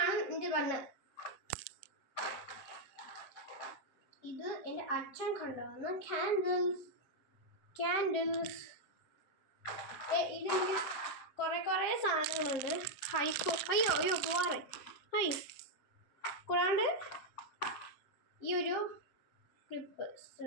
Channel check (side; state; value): right; late; 7.1 ms